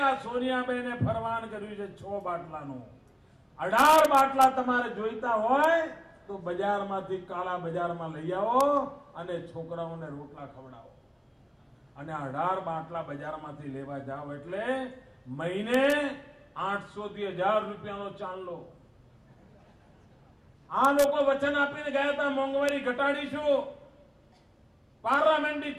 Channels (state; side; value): identical; both; correlation 1.00